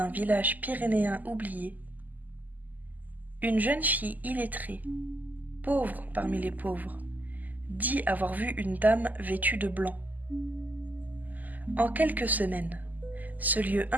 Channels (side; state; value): left; late; 0.082 ms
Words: village pyrénéen oublié, une jeune fille illettrée, pauvre parmi les pauvres, dit avoir vu une dame vêtue de blanc. En quelques semaines, ce lieu